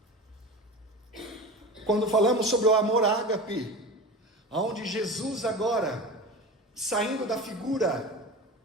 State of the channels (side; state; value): both; normal; correlation 0.31